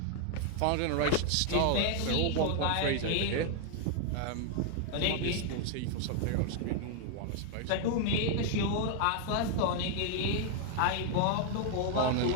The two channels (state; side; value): different; both; correlation 0.00